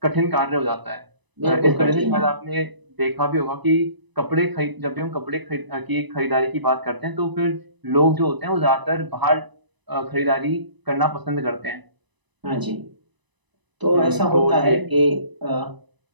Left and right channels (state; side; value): late; left; 1.0 ms